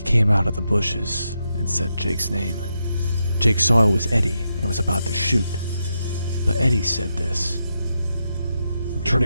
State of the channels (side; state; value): both; inverted; correlation -0.84